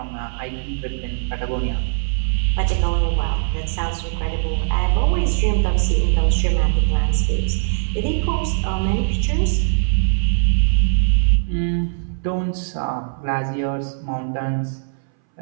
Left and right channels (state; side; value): silent; left; 64 dB below the other